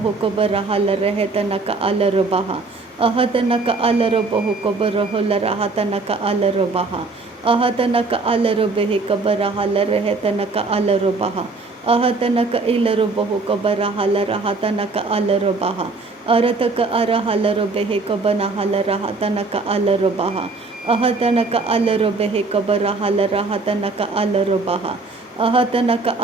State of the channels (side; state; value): left; quieter; 3.7 dB